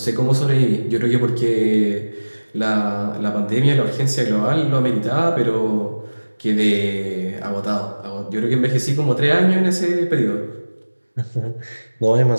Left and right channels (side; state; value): both; inverted; correlation -1.00